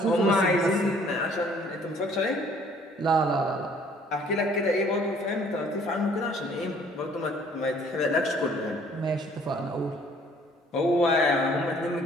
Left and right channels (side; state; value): both; normal; correlation 0.58